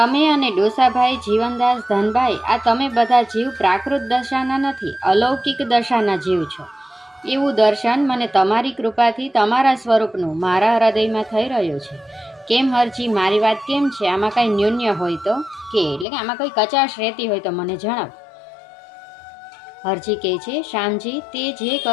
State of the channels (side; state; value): right; drops out; at 16.1 s